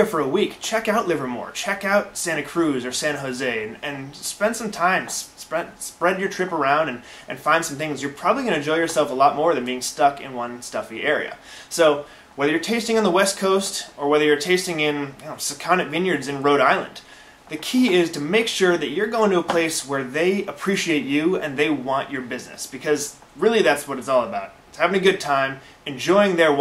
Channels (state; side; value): identical; both; correlation 1.00